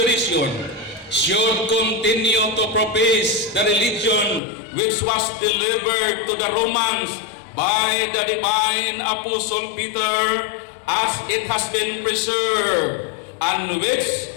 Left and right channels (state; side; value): drops out; right; at 4.4 s